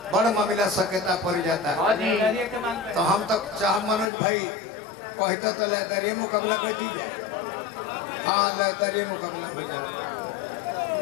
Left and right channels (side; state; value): right; drops out; at 4.1 s